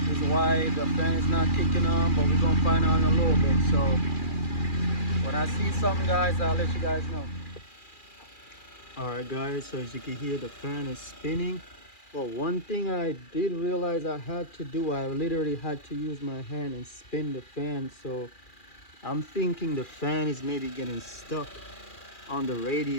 is why the fan is not kicking on, but we're going to find out in a little bit. So when I see something guys, I'll let you guys know. Alright guys, so as you can hear, the fan is spinning. Well, one thing I did realize I had to do, I literally had to use my hand and spin the fan. So I'm thinking the fan is maybe getting stuck on the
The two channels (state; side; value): late; right; 2.4 ms